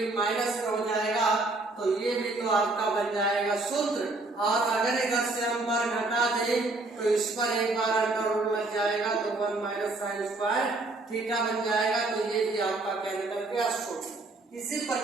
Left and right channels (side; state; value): left; quieter; 3.1 dB